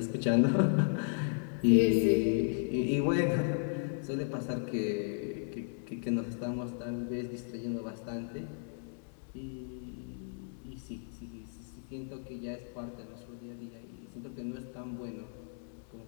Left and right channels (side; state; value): right; silent; digital silence